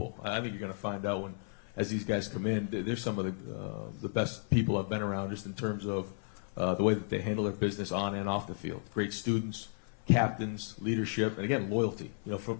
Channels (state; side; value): silent; right; 55 dB below the other